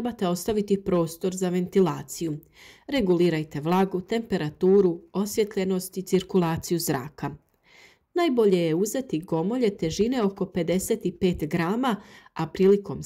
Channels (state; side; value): identical; both; correlation 1.00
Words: ostaviti prostor za ventilaciju. Regulirajte vlagu, temperaturu, osvjetljenost i cirkulaciju zraka. Najbolje je uzeti gomolje težine oko 55 grama, a prilikom